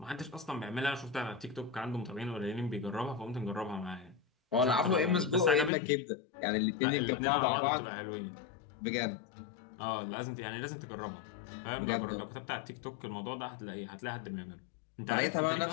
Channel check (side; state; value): right; drops out; at 5.7 s